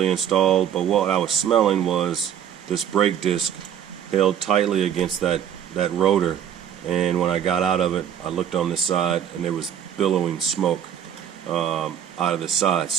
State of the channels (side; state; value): left; quieter; 9.4 dB